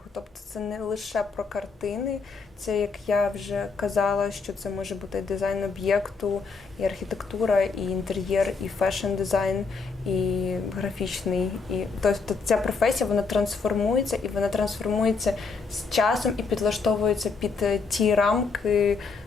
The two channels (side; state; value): right; quieter; 4.7 dB